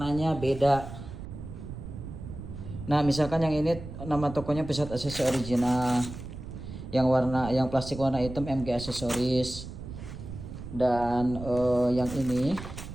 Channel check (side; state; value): right; noise; rumble, 11 dB below the sound